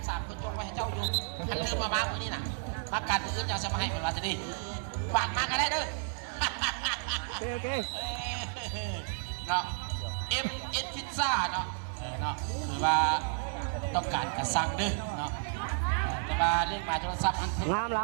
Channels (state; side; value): silent; left; 56 dB below the other